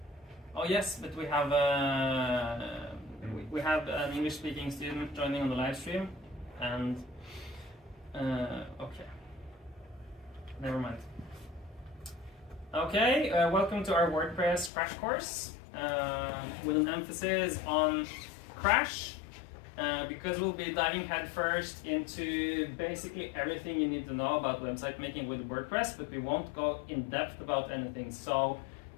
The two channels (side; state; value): right; drops out; at 14.7 s